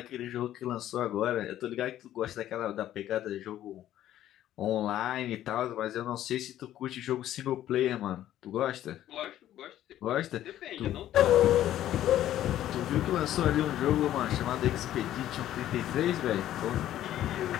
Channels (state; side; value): quieter; right; 12.5 dB